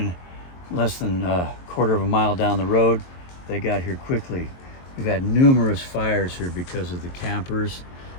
less than a quarter of a mile down the road. They got here quickly. We've had numerous fires here because of the campers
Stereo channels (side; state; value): right; late; 22 ms